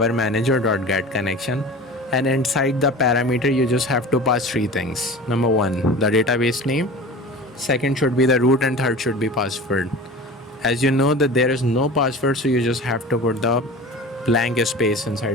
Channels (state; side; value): normal; both; correlation 0.36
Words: manager.getConnection, and inside the parameter you just have to pass three things. Number one, the database name, second should be the root, and third should be password. As you know that there is no password, so you just have to put the blank space